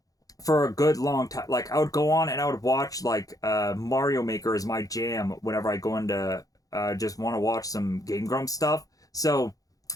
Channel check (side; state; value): right; late; 0.17 ms